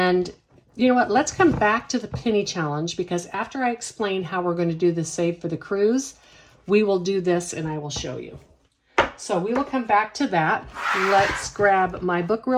you know what? Let's come back to the penny challenge because after I explain how we're going to do the Save for the Cruise, we will do this and I will show you. So we will come back to that. Let's grab my book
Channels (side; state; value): both; identical; correlation 1.00